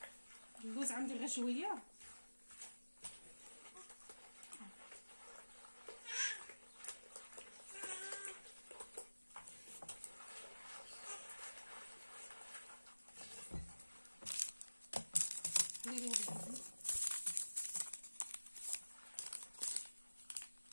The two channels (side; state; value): both; inverted; correlation -1.00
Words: اللوز عندي غير شويه.